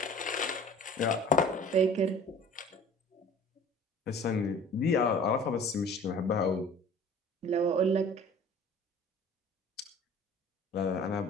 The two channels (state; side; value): normal; both; correlation 0.45